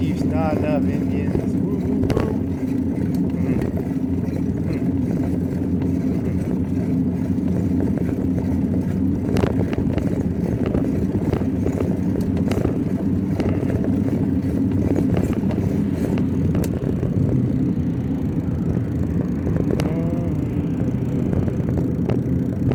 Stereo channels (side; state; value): both; identical; correlation 1.00